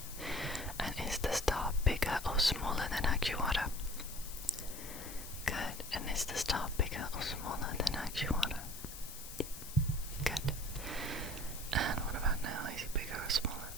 And is the star bigger or smaller than Agiwara? Good. And is the star bigger or smaller than Agiwara? Good. And what about now? Is it bigger or smaller?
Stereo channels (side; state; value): left; noise; hiss, 11 dB below the sound